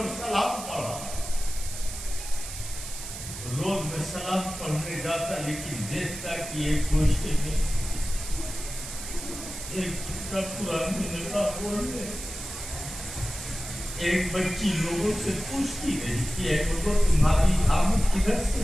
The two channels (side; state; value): right; noise; hiss, 9 dB below the sound